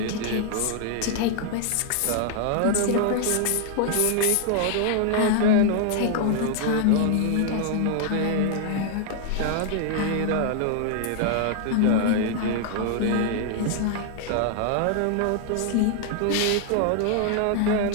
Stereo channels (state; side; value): different; both; correlation 0.00